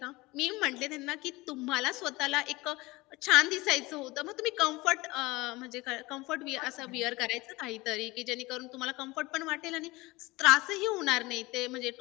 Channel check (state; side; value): quieter; right; 21.7 dB